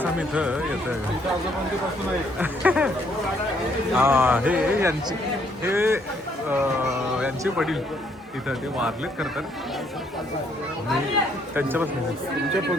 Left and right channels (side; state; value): both; normal; correlation 0.68